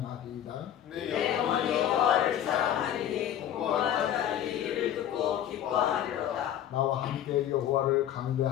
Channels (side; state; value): right; quieter; 10.7 dB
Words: 내 영혼이 여호와를 사랑하리니 공고한 자들이 이를 듣고 기뻐하리로다. 나와 함께 여호와를